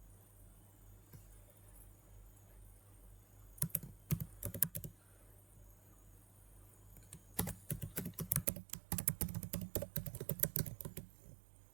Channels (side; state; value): left; drops out; at 8.5 s